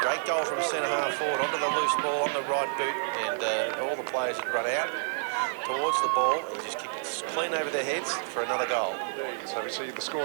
Great goal from centre half forward. Onto the loose ball on the right boot. And all the players had run out towards the ball. He just kicked it clean over their heads for another goal. So we see the score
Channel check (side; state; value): left; silent; digital silence